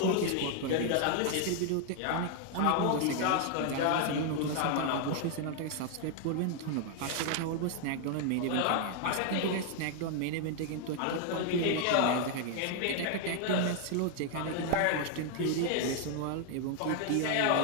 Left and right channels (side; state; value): both; different; correlation 0.00